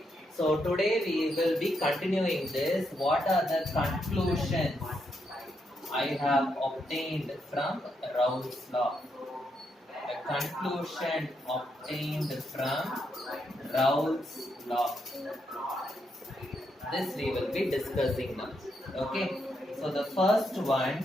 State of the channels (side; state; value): both; normal; correlation 0.80